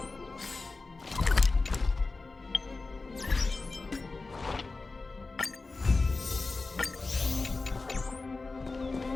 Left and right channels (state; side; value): quieter; right; 3.7 dB